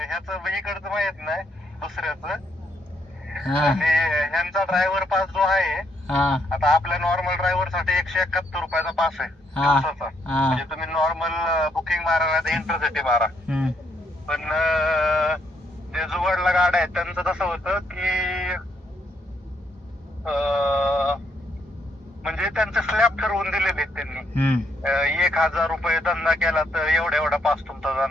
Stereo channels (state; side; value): normal; both; correlation 0.74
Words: ह्याचं इकडचं माहित नाही, दुसऱ्याचं. हा आणि ह्यांचा ड्रायव्हर पास जो आहे, हा आता आपल्या नॉर्मल ड्रायव्हर साठी 171 रुपयाचा पास आहे दिवसाचा. हा. म्हणजे तुम्ही नॉर्मल बुकिंग मारा नाही इंटरसिटी मारा. पण जे जुगाडला गाड्या आहेत त्यांचं कसं होतं की म्हणजे त्यांचे स्लॅब ठरवून दिलेले आहेत त्यांनी. 1,000 रुपये धंदा केला तर एवढा पास तुमचा